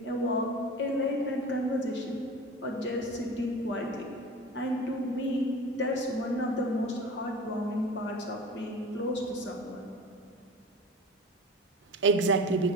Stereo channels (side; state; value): both; normal; correlation 0.36